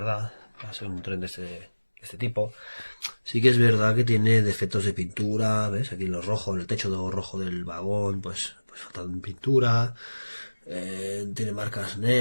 va a ser un tren de este tipo. Sí que es verdad que tiene defectos de pintura, ¿ves? Aquí en lo rojo, en el techo rojo del vagón, pues falta pintura, tiene marcas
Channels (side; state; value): both; inverted; correlation -1.00